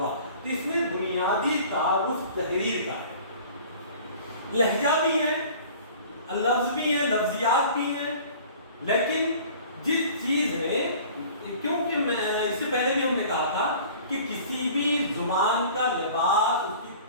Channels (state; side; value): inverted; both; correlation -0.46